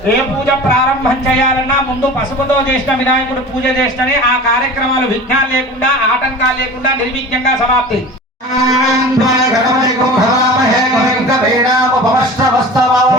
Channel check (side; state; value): both; normal; correlation 0.37